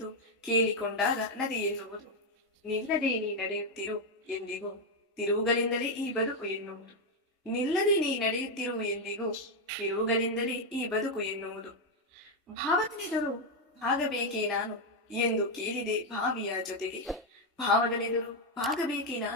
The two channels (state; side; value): normal; both; correlation 0.03